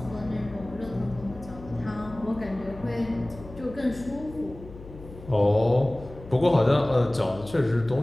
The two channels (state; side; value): noise; left; hum, 16 dB below the sound